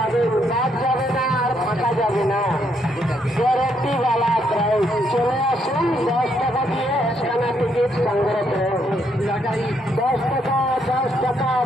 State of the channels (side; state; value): both; normal; correlation 0.74